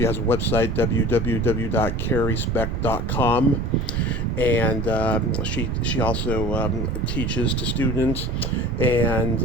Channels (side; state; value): right; noise; rumble, 3 dB below the sound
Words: has a website, www.carriespecht.com, and she also teaches to students,